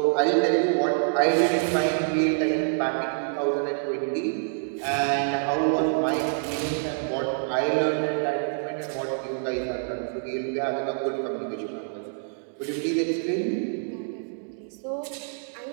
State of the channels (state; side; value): silent; left; digital silence